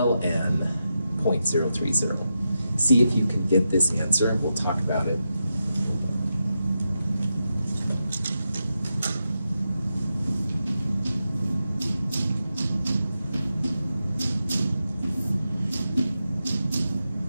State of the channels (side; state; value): both; inverted; correlation -0.87